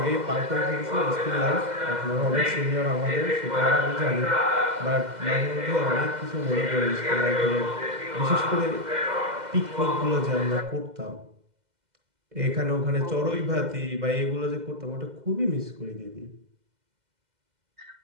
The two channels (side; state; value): left; late; 2.0 ms